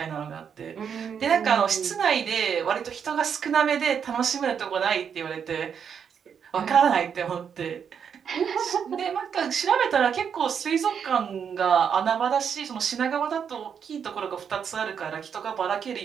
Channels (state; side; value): quieter; left; 7.4 dB